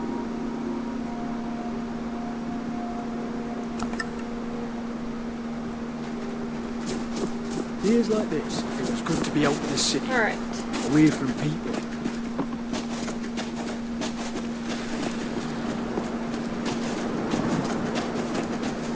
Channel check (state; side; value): identical; both; correlation 1.00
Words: Years like this, it feels good to be out in the city. Alright. Away from people.